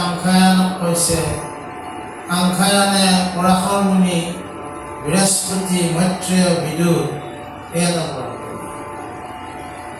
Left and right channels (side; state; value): both; identical; correlation 1.00